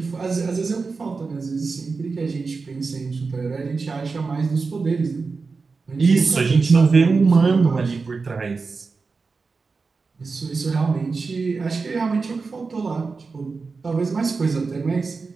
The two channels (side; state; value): left; quieter; 4.4 dB